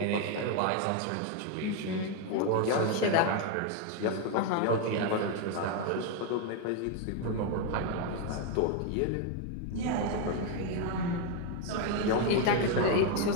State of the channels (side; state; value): both; different; correlation 0.01